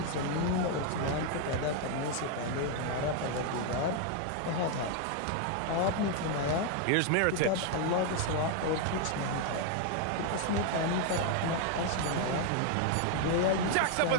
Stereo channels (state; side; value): different; both; correlation 0.01